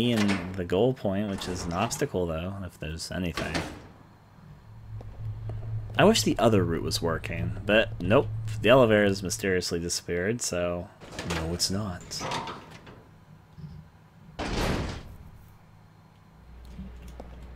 and the goal point, which is an obstacle, though, if there's anything. I wish the other route was working, but nope. The elevator has mysteriously disappeared, so... no, it's not.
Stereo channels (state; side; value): identical; both; correlation 1.00